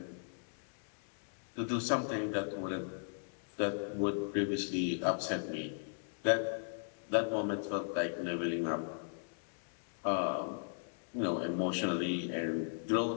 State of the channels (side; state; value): right; silent; digital silence